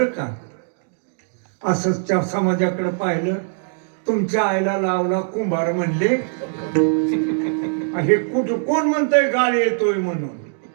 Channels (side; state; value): left; silent; digital silence